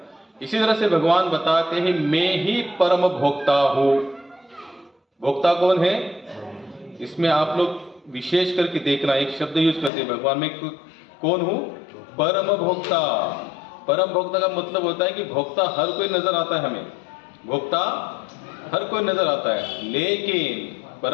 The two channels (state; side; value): drops out; right; at 9.9 s